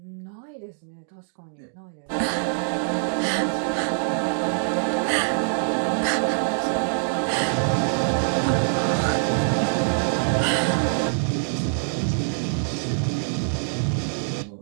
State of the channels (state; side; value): silent; left; digital silence